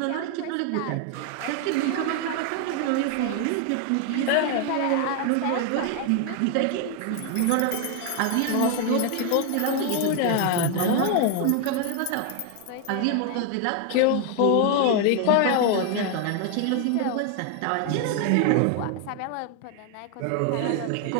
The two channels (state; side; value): different; both; correlation 0.01